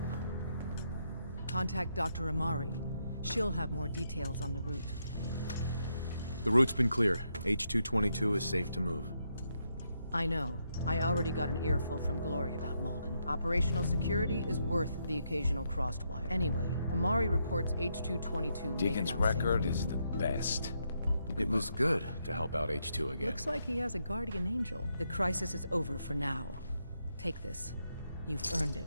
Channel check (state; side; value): inverted; both; correlation -0.79